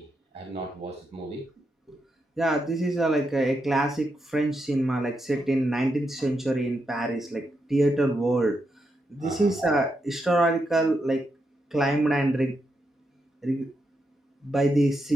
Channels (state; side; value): normal; both; correlation 0.83